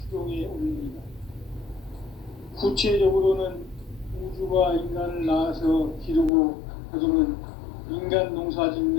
추동의 원리이다. 구체적으로는 우주가 인간을 낳아서 기르고 거두는 인간 농사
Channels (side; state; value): right; drops out; at 6.3 s